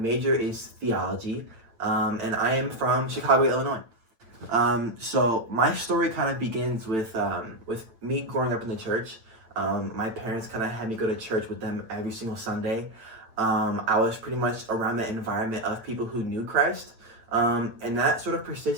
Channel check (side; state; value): left; late; 9.0 ms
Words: is theology, and I am from Chicago, Illinois. So my story kind of begins with me growing up in the church. My parents kind of had me go to church with them every single Sunday. I was pretty much around the environment of people who knew Christ, and that sort of